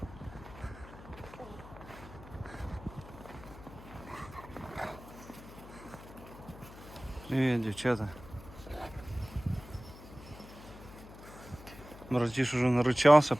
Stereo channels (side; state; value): left; noise; hum, 17 dB below the sound